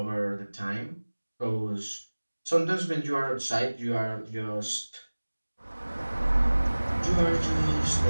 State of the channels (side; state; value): both; inverted; correlation -1.00